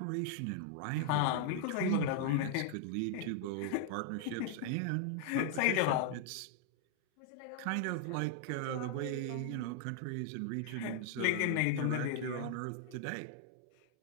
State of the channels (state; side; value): different; both; correlation 0.00